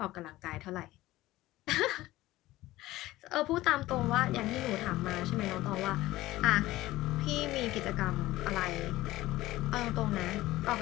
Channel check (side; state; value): right; quieter; 17.0 dB